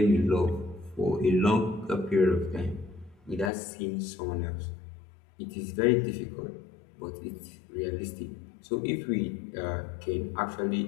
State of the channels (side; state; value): right; drops out; at 3.5 s